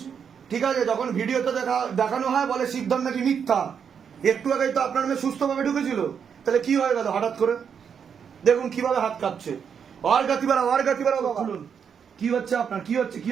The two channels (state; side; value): quieter; left; 7.2 dB